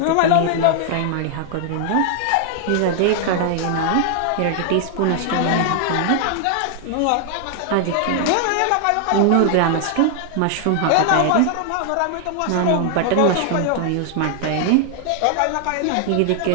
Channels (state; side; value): different; both; correlation 0.00